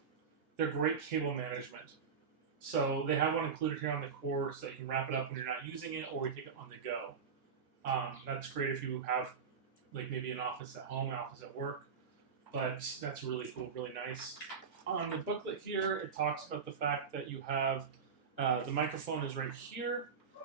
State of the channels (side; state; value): left; quieter; 6.1 dB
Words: They're great cable management. So they have one included here on the cord so you can wrap it up when you're not using it or you take it on the go. That's great if you have maybe an office at home, an office at work. But that's really cool, really nice. On the booklet here, it talks about the fact that you have the microphone is right here,